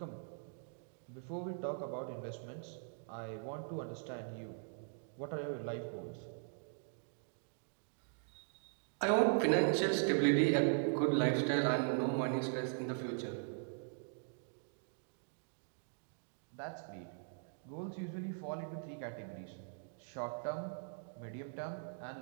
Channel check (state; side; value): silent; left; digital silence